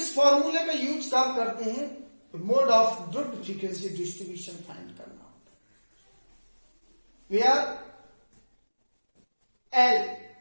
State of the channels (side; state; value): both; inverted; correlation -1.00